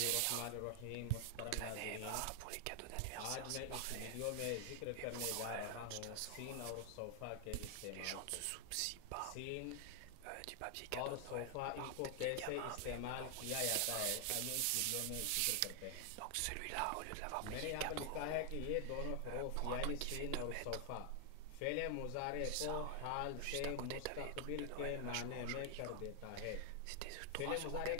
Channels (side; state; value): both; different; correlation 0.00